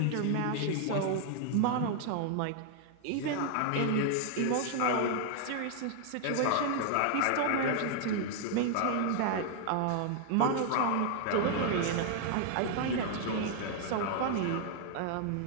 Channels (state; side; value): different; both; correlation 0.00